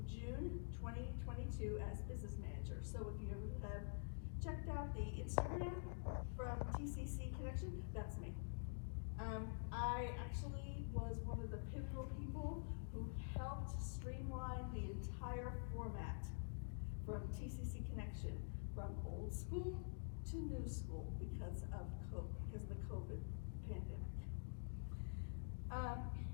June 2022 as business manager. So if you ever have checked out the Instagram from TCC Connection, that's me. I actually was one of the pivotal people who helped streamline the entire format from TCC Connection, from old school to new school because of the COVID pandemic.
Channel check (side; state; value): right; silent; digital silence